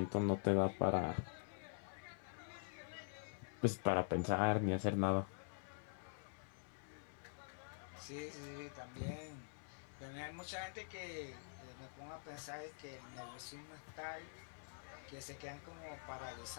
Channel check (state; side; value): silent; right; digital silence